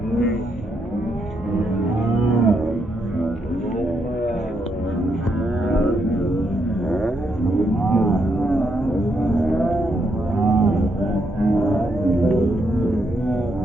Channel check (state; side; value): normal; both; correlation 0.78